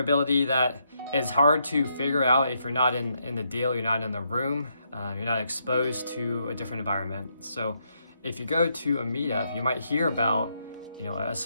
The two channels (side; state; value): both; inverted; correlation -0.77